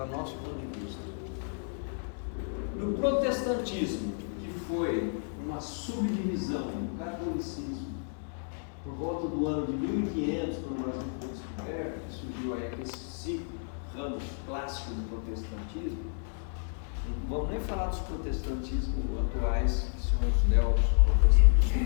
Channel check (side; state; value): right; silent; 57 dB below the other